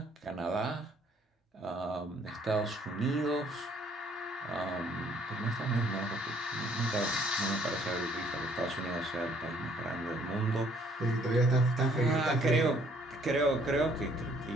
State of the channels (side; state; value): both; normal; correlation 0.63